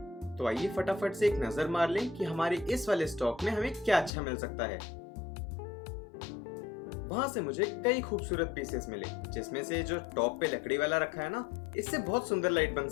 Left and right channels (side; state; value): right; drops out; at 4.1 s